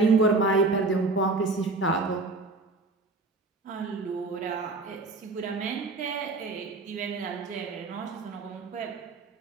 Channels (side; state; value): left; quieter; 3.4 dB